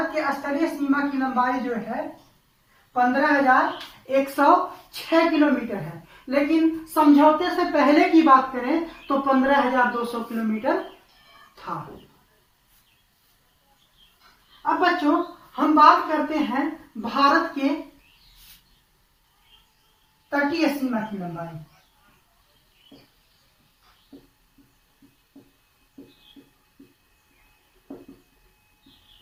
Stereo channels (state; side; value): identical; both; correlation 1.00